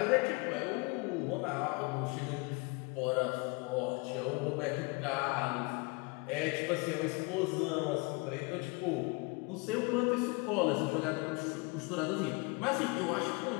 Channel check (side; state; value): right; quieter; 28.3 dB